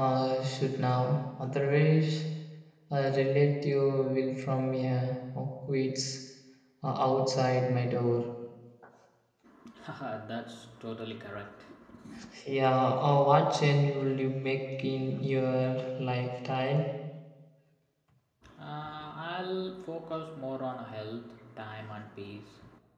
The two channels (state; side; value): identical; both; correlation 1.00